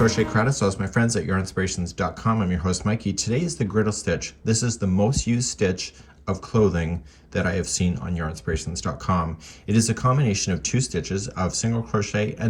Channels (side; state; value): both; identical; correlation 1.00